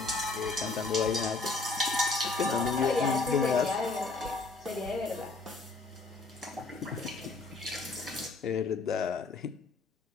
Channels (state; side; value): quieter; right; 3.8 dB